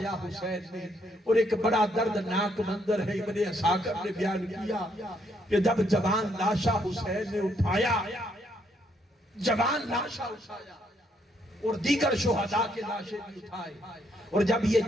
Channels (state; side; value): normal; both; correlation 0.72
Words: حسین نے، اور ایک بڑا دردناک منظر ہے ابن اساکر نے بیان کیا کہ جب جوان لاشا حسین نے اٹھایا، جوان لاشا اٹھایا اور دیگر شہداء کے لاشیں بھی اٹھائے، اور جب یہ